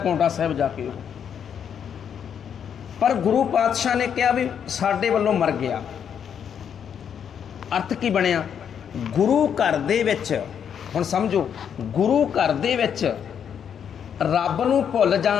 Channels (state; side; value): quieter; right; 8.1 dB